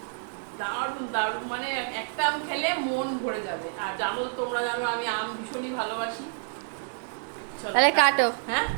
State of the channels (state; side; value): silent; left; digital silence